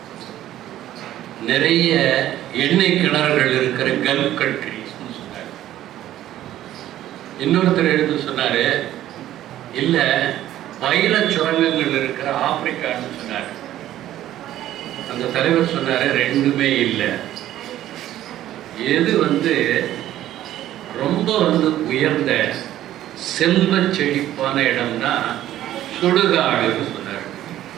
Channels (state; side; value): quieter; left; 13.1 dB